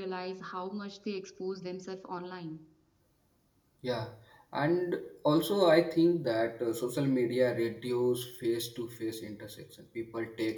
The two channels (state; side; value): identical; both; correlation 1.00